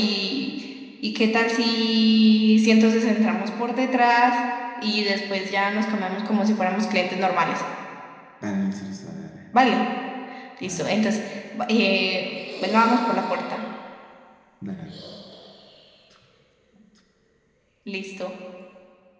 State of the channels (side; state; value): both; identical; correlation 1.00